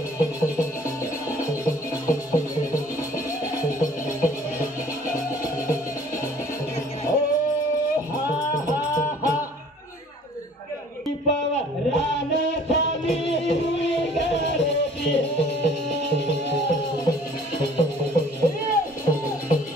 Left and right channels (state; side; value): normal; both; correlation 0.53